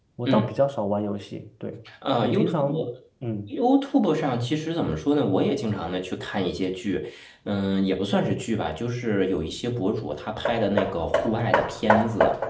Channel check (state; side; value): identical; both; correlation 1.00